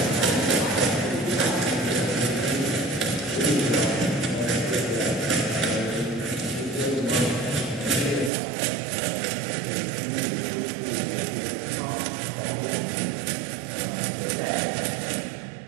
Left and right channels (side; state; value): left; drops out; at 8.3 s